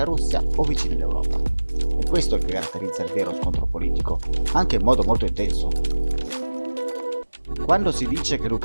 Russia o vicini all'Europa. È questo che caratterizza il vero scontro politico, anche in modo molto intenso. Quando si dice che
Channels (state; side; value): inverted; both; correlation -1.00